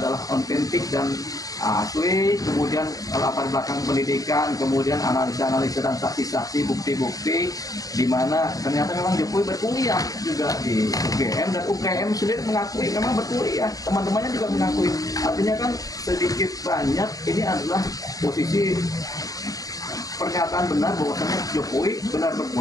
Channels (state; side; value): late; right; 0.17 ms